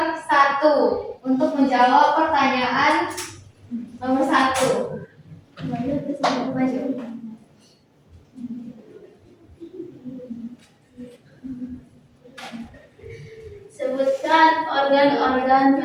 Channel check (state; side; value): identical; both; correlation 1.00